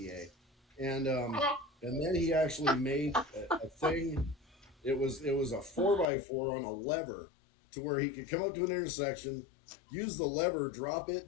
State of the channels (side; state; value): right; drops out; at 6.1 s